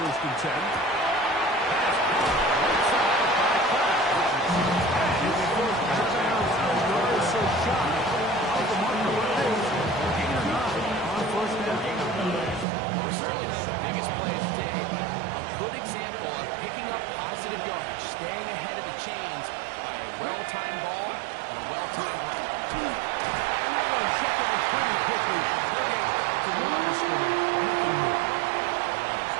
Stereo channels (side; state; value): left; drops out; at 12.7 s